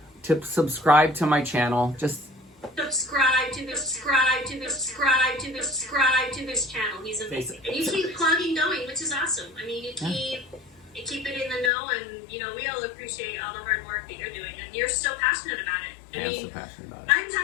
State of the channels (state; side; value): drops out; right; at 11.7 s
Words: to subscribe to my channel? Just subscribe to this channel. He's amazing. And you keep clogging going, which is awesome. I mean, you keep it in the know, and we all appreciate all the hard work that you're doing, and you're so passionate about it. I'm so passionate about it. I'm